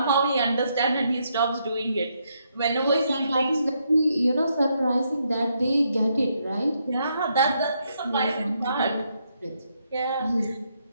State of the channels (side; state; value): both; inverted; correlation -0.77